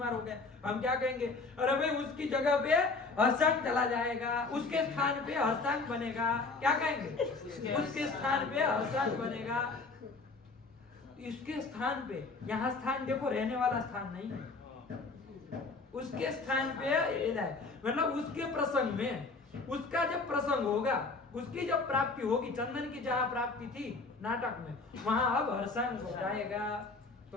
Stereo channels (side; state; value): right; quieter; 3.9 dB